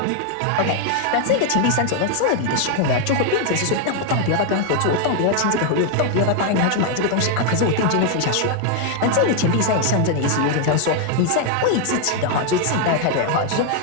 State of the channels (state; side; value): different; both; correlation 0.00